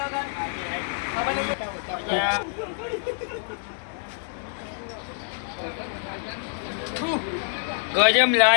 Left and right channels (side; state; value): right; silent; digital silence